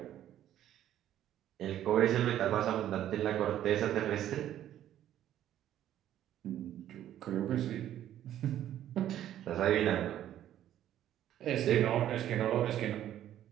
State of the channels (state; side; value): quieter; left; 11.8 dB